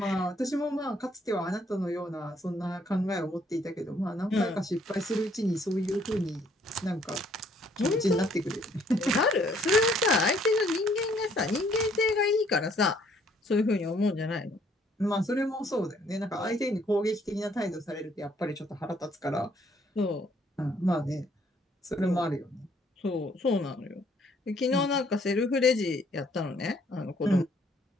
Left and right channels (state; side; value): normal; both; correlation 0.64